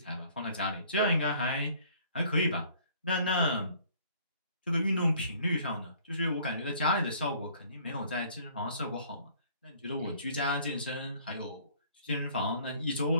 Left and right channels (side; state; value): both; inverted; correlation -0.56